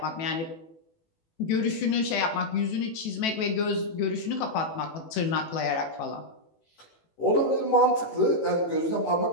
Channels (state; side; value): late; right; 18 ms